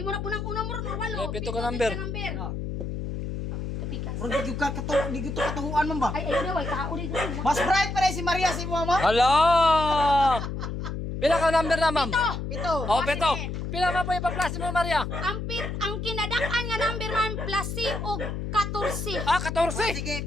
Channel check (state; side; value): noise; left; hum, 5 dB below the sound